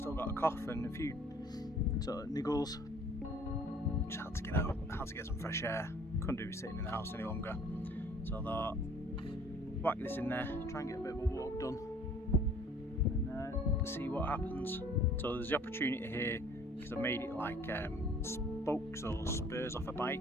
got a cough and a few sort of niggles. Just had to get out, had to get some fresh air. Couldn't do sitting in the house any longer. So I thought, whack this in there, try and get a bit of a walk done and see what happens. So there's the opportunity here, because I made it like spokes or spurs off a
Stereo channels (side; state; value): both; normal; correlation 0.54